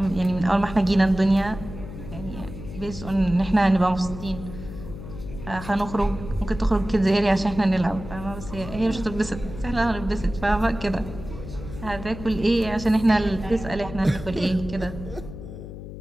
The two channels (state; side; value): noise; left; hum, 11 dB below the sound